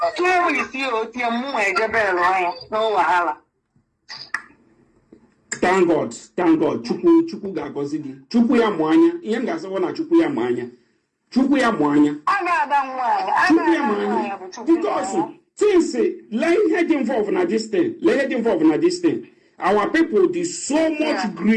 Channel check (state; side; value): identical; both; correlation 1.00